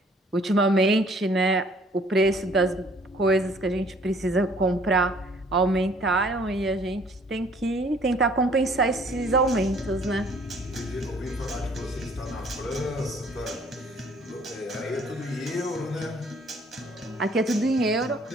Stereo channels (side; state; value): both; normal; correlation 0.58